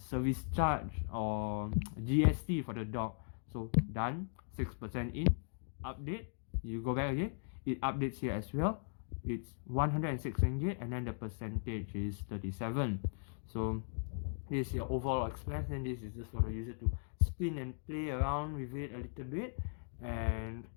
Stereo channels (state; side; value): silent; right; digital silence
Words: charge or GST for the dog. So done, 6% in, update, you go back again, it updates here as well. It's 106 ringgit, and then the percentage is 37. So this is your overall expense, and this is just for the user to spin and play around with it a little bit. And